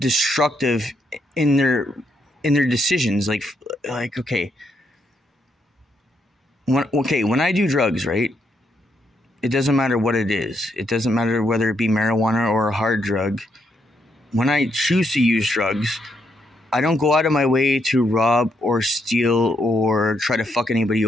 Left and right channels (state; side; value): normal; both; correlation 0.77